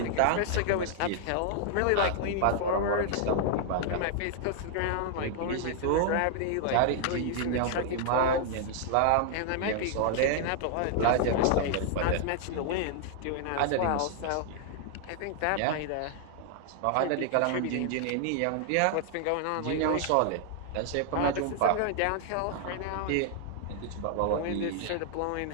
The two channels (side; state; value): both; different; correlation 0.00